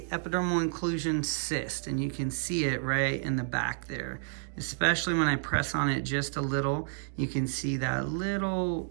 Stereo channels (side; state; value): left; silent; digital silence